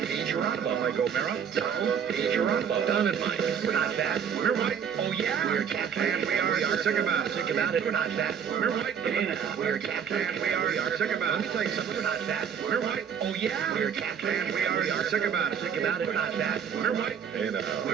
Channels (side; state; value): left; quieter; 7.7 dB